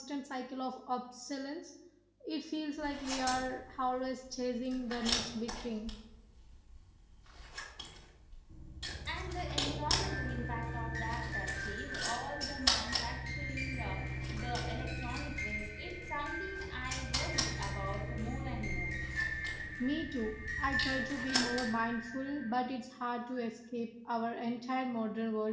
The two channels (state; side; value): identical; both; correlation 1.00